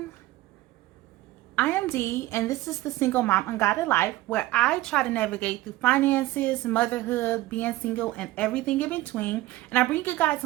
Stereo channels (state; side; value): quieter; left; 17.2 dB